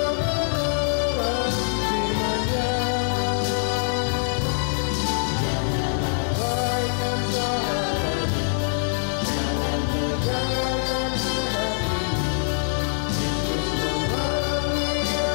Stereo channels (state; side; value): silent; right; digital silence